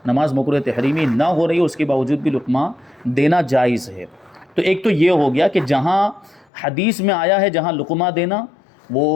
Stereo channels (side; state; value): right; drops out; at 6.5 s